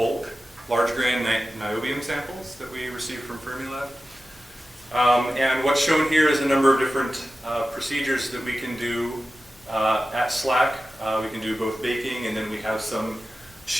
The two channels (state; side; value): normal; both; correlation 0.94